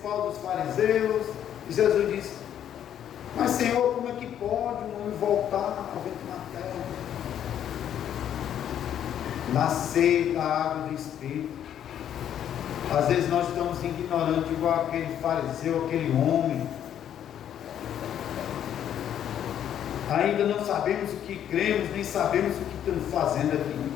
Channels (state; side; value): quieter; right; 10.1 dB